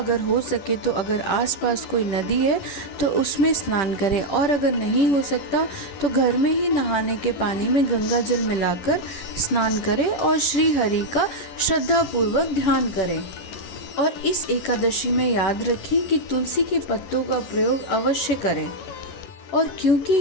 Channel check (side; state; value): right; late; 10 ms